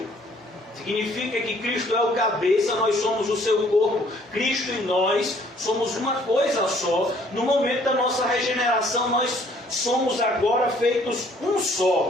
Significa que Cristo é o cabeça, nós somos o seu corpo. Cristo e nós somos uma coisa só. No momento da nossa regeneração, nós somos agora feitos um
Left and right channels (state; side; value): normal; both; correlation 0.60